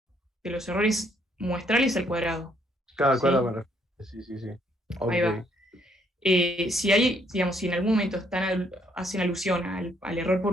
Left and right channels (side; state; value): both; normal; correlation 0.69